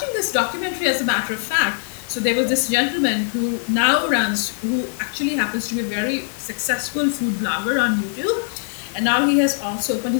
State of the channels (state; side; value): silent; right; 63 dB below the other